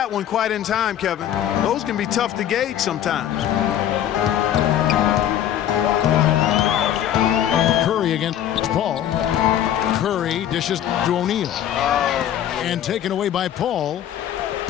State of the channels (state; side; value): quieter; right; 10.9 dB